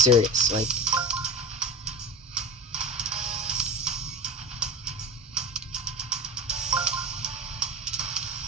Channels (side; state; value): both; normal; correlation 0.29